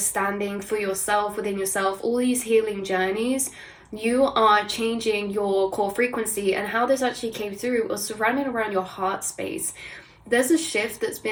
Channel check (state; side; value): identical; both; correlation 1.00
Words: for yourself, within yourself, all these healing journeys, you are changing your core frequency. And how this actually came through was surrounding around your heart space. There's a shift that's